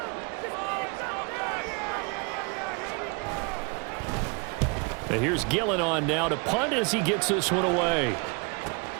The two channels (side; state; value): left; quieter; 31.9 dB